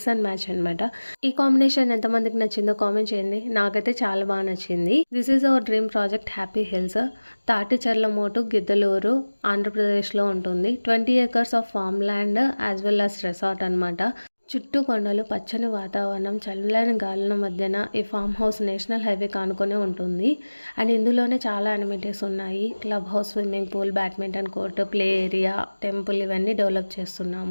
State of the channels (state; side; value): inverted; both; correlation -1.00